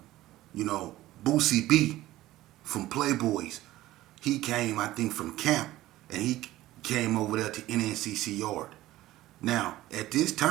Boosie B from Playboys, he came, I think, from camp, and he came over there to Nncc yard. Now, at this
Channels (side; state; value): left; quieter; 16.0 dB